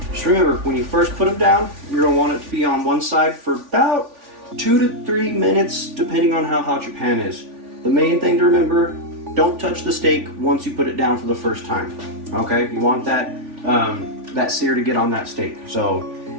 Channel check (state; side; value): late; left; 3.5 ms